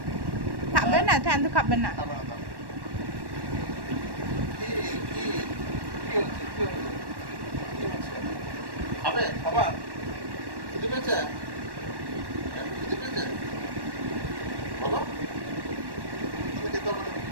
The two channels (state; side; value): late; left; 1.1 ms